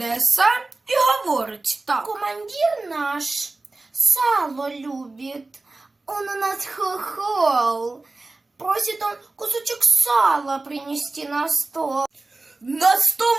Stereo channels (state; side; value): quieter; left; 3.3 dB